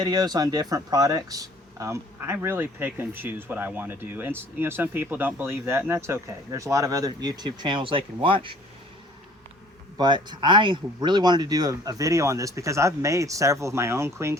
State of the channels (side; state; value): both; normal; correlation 0.53